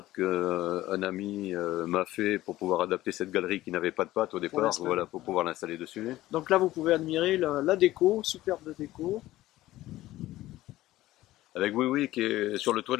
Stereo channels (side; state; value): right; quieter; 15.9 dB